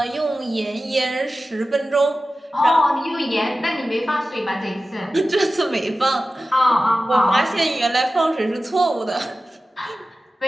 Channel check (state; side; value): normal; both; correlation 0.95